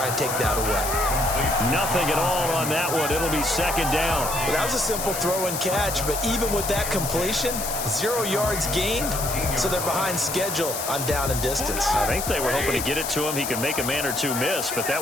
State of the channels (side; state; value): left; noise; hiss, 5 dB below the sound